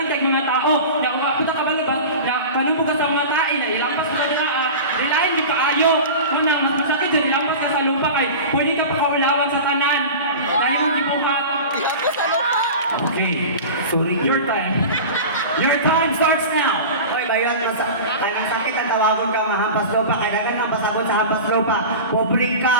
kay mga tao ya puta ka balo ba ya kanimo ka sa mga tae na ilampas ka dira ilain di paayo una mas masakit yung ilampas ka sa lupa kay pwede ka pakaulawan sa tanan dahil ang gibuhat. Okay, sorry, your time. Your time starts now. Oy, bayon, ang sakit ang tawagon ka mahampas lupa, kaya dagan ang pasabot sa hampas lupa. Pobre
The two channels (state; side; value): inverted; both; correlation -0.32